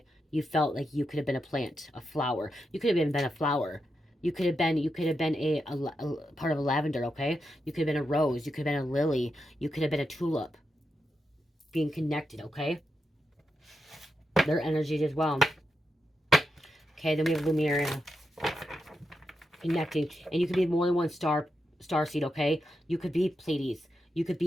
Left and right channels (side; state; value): both; normal; correlation 0.86